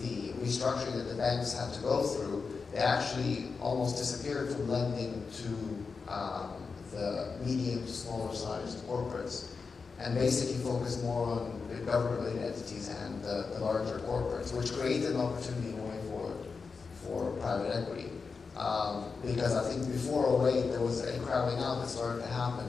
restructuring that the banks had to go through, they actually almost disappeared from lending to the medium to smaller sized corporates, and basically focused more on the government-related entities and the larger corporates, which created an opportunity going forward for private equity. Because I think before 2008, there was a crowding out that started to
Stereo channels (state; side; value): quieter; right; 4.9 dB